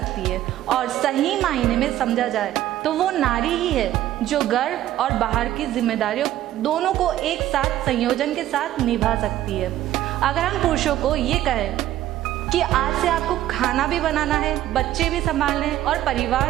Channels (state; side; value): quieter; left; 13.4 dB